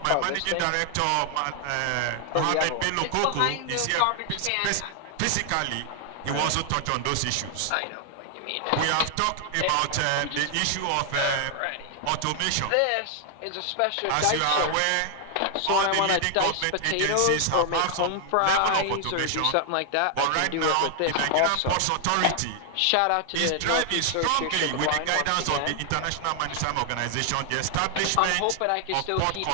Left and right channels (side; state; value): both; different; correlation 0.00